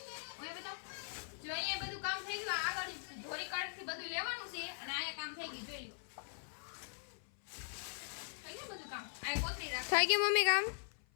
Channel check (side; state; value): right; silent; 51 dB below the other